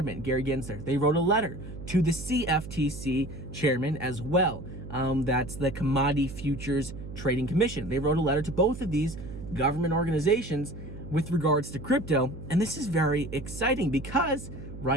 Gary Gensler. They wrote a letter to the CFTC chairman as well. That's the Commodity Futures Trading Commission. They wrote a letter to both of these government organizations with regards to crypto. And this is very exciting because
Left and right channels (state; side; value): noise; right; hum, 11 dB below the sound